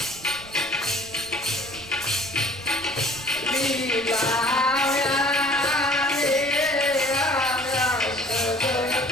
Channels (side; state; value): right; noise; rumble, 20 dB below the sound